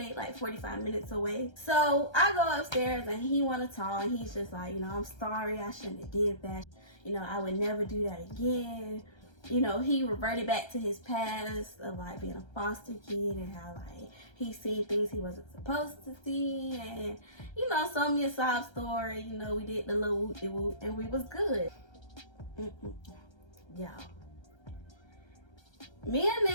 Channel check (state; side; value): late; right; 1.3 ms